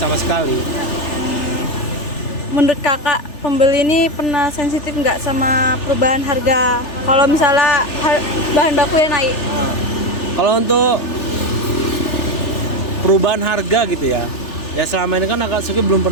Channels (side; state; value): right; late; 3.4 ms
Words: sekali. Menurut Kakak, pembeli ini pernah sensitif nggak sama perubahan harga? Kalau misalnya bahan baku yang naik? Kalau untuk perubahan harga gitu ya selama ini kan Akatsuki belum